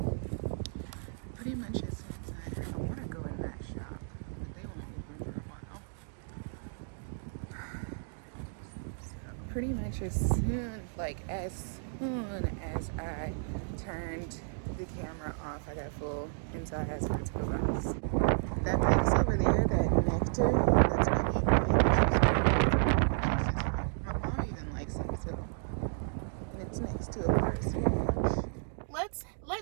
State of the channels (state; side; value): silent; left; digital silence